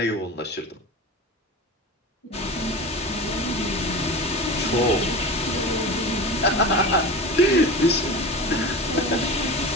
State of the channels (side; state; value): both; normal; correlation 0.30